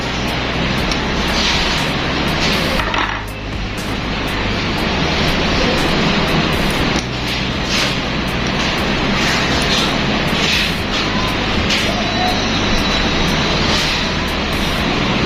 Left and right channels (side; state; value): both; identical; correlation 1.00